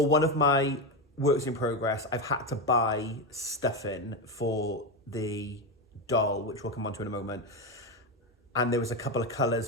one of my works in progress, I've had to buy stuffing for the doll, which we'll come on to in a moment. And there was a couple of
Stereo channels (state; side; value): normal; both; correlation 0.13